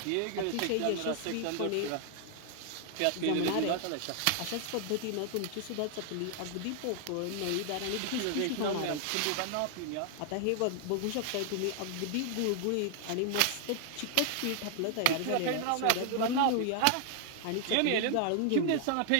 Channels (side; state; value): both; different; correlation 0.00